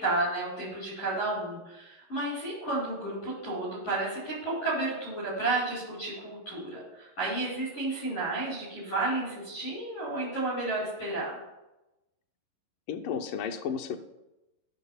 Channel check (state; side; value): late; right; 11 ms